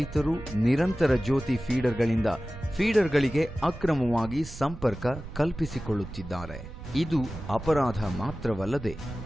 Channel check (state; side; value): noise; right; rumble, 13 dB below the sound